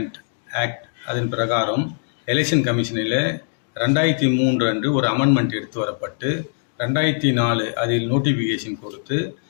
ஆக்ட் அதன் பிரகாரம் எலெக்ஷன் கமிஷனில் 2003 அன்று ஒரு அமெண்ட்மெண்ட் எடுத்து வரப்பட்டு 2004 அதில் நோட்டிஃபிகேஷன் கொடுத்து,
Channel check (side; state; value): right; silent; digital silence